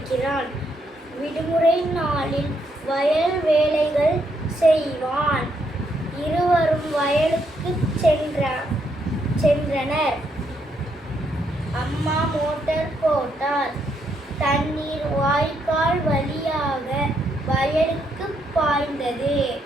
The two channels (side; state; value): both; normal; correlation 0.76